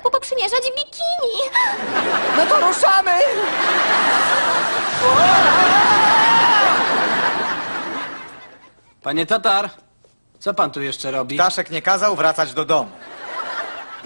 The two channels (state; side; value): inverted; both; correlation -1.00